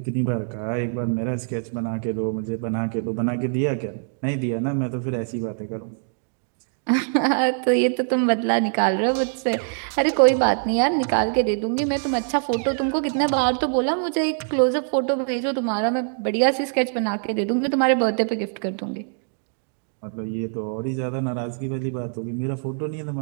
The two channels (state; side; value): silent; left; digital silence